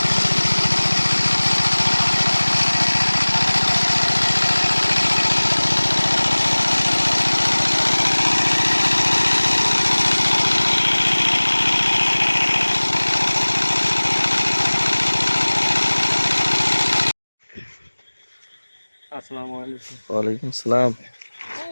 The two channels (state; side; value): inverted; both; correlation -1.00